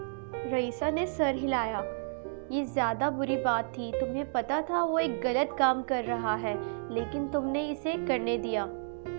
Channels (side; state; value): left; silent; digital silence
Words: رئیسہ نے سر ہلایا۔ یہ زیادہ بری بات تھی، تمہیں پتہ تھا وہ ایک غلط کام کر رہا ہے، لیکن تم نے اسے کرنے دیا